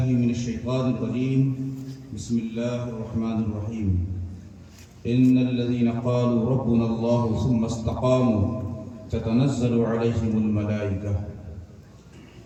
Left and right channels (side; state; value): both; identical; correlation 1.00